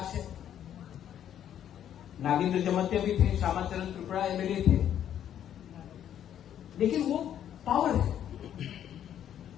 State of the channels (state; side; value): quieter; right; 10.2 dB